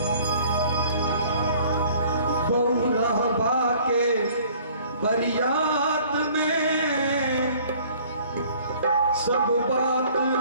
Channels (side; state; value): both; inverted; correlation -0.54